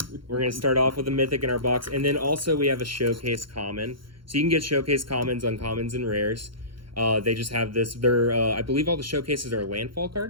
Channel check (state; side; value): late; left; 0.73 ms